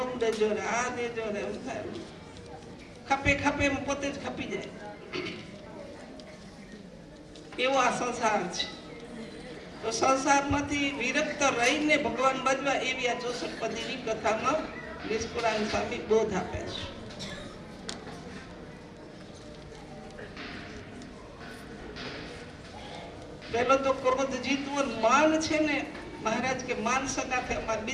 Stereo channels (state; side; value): identical; both; correlation 1.00